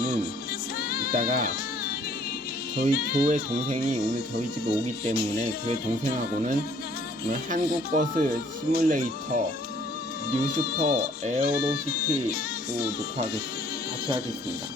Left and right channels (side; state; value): both; normal; correlation 0.59